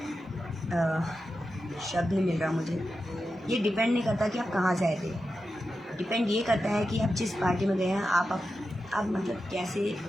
शब्द नहीं मिल रहा मुझे। ये डिपेंड नहीं करता कि आप कहाँ से आए थे, डिपेंड ये करता है कि आप जिस पार्टी में गए हैं, आप मतलब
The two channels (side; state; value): both; normal; correlation 0.90